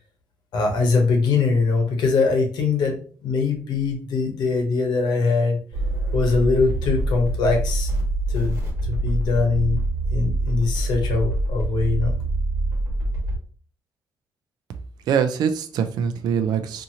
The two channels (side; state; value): both; normal; correlation 0.70